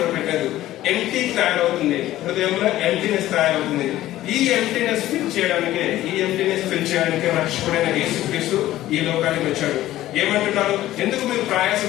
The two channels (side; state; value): right; quieter; 14.7 dB